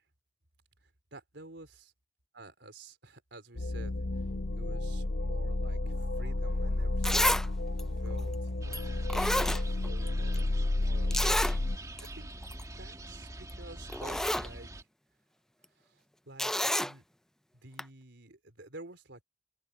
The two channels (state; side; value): normal; both; correlation 0.81